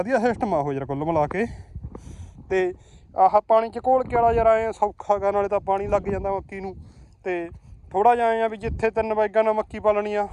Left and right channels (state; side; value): identical; both; correlation 1.00